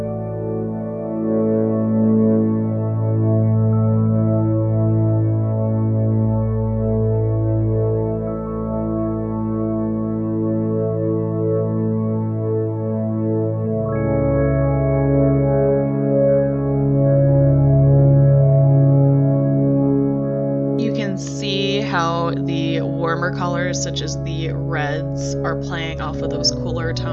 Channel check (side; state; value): both; identical; correlation 1.00